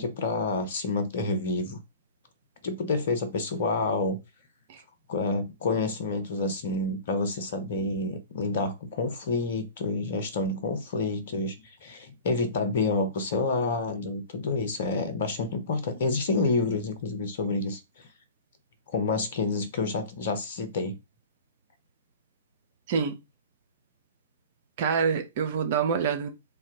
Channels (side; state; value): both; inverted; correlation -0.39